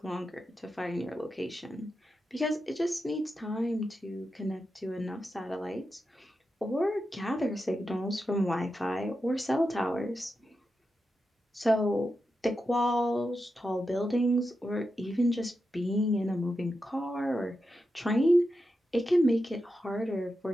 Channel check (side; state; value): both; normal; correlation 0.89